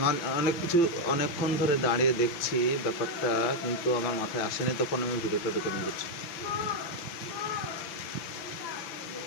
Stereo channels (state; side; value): late; right; 5.9 ms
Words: অনেক কিছু অনেকক্ষণ ধরে দাঁড়িয়ে দেখছি ব্যাপারটা, কিন্তু আমার মাথায় আসেনি, তখন আমি ভিডিওটা রেকর্ডিং করছি।